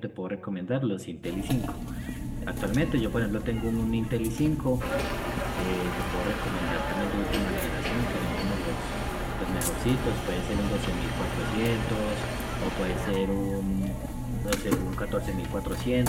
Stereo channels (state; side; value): identical; both; correlation 1.00